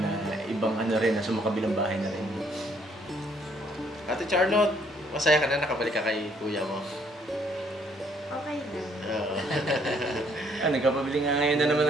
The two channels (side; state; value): both; normal; correlation 0.66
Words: na ibang rin, nasa makabilang bahay na rin. Ate Charlotte, masaya ka na nakabalik ka kay kuya mo? Okay na. Oo. Nagkapabili nga ngayon na naman